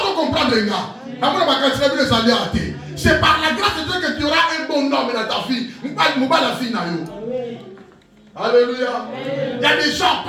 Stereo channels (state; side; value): identical; both; correlation 1.00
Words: de comprendre les gars. C'est par la grâce de Dieu que tu auras un bon homme dans ta vie. Alléluia. Il y a des gens,